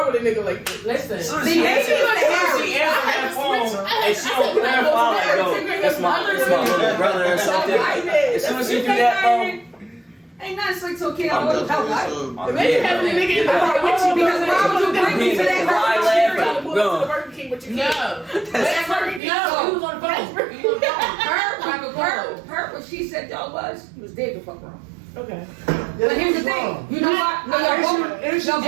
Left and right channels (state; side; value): drops out; left; at 19.2 s